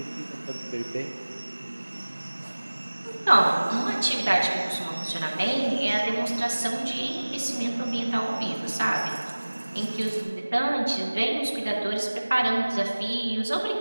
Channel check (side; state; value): both; inverted; correlation -1.00